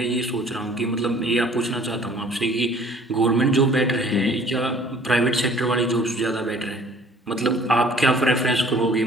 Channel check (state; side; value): normal; both; correlation 0.53